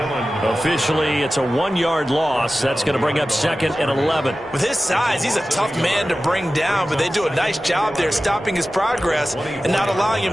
Officially, it's a 1-yard loss. That's going to bring up 2nd and 11. With his size, he's a tough man to bring down, but they do a nice job there stopping his progress and not allowing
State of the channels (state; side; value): normal; both; correlation 0.95